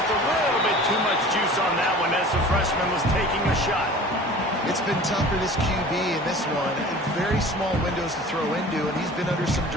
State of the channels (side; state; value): both; normal; correlation 0.42